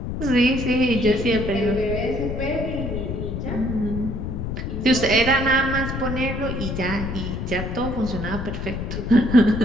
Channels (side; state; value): left; noise; rumble, 4 dB below the sound